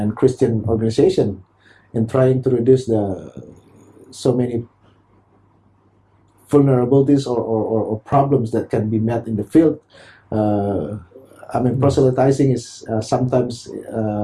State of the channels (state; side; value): identical; both; correlation 1.00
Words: Christian organization in trying to reduce so many vulnerabilities or problems that can be met in the field. Proselytizing is sometimes